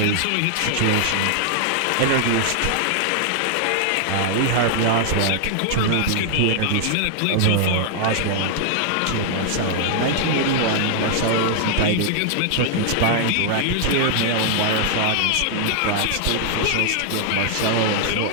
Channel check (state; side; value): different; both; correlation 0.00